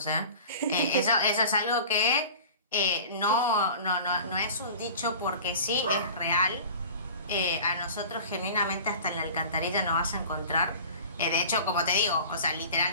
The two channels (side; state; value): both; inverted; correlation -0.40